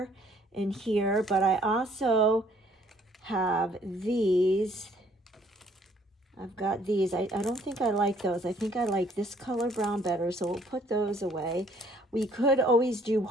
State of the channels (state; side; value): normal; both; correlation 0.62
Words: and here, but I also have these. I've got these. I don't think I like those. I think I like this color brown better, so we'll put those away. We could always do